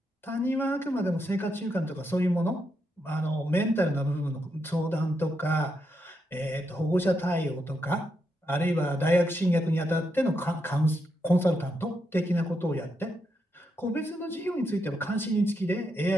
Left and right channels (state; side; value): normal; both; correlation 0.82